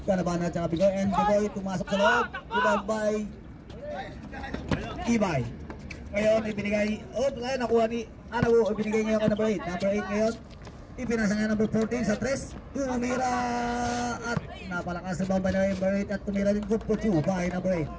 Ganaban at saka Bicoy, and Bicoy tumasok sa loob. Rebound by Ibay. Ngayon ibinigay, nakuha ni Anabo, ibinigay ngayon kay number 8. Number 8 ngayon, ipinasa nga number 14 sa 3. Tumira at napalakas sa bamba na number 8 at tumira din good for 2 by number 8.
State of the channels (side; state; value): both; identical; correlation 1.00